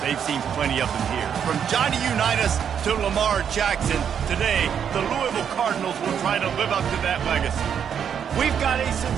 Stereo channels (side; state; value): left; quieter; 8.0 dB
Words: they've seen plenty of them here. From Johnny Unitas to Lamar Jackson, today, the Louisville Cardinals will try to live up to that legacy. We've got a